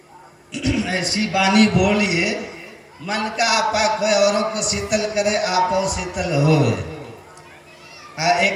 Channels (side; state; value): both; identical; correlation 1.00